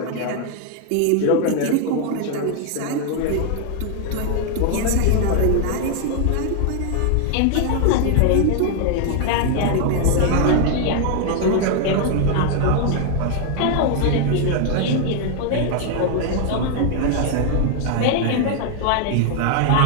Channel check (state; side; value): different; both; correlation 0.00